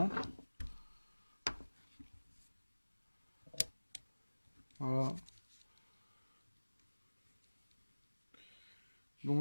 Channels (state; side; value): inverted; both; correlation -1.00